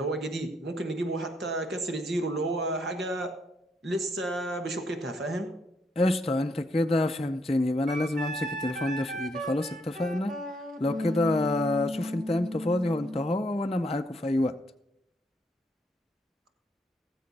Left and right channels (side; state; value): both; normal; correlation 0.74